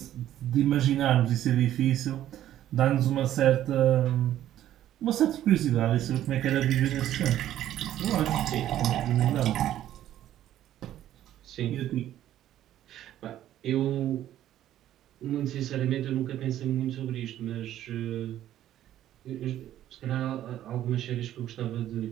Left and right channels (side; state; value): left; quieter; 12.3 dB